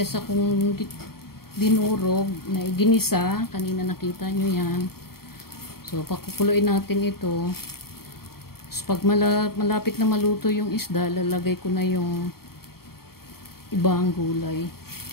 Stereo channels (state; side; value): late; right; 0.94 ms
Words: akong dinurog na ginisa. Kanina nakita nyo yan. So, pakukuluin natin ito. So, pag malapit na maluto yung isda, lalagay ko na yung ibang gulay.